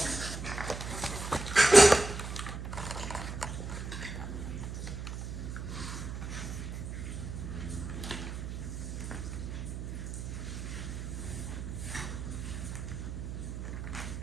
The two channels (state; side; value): noise; right; hum, 6 dB below the sound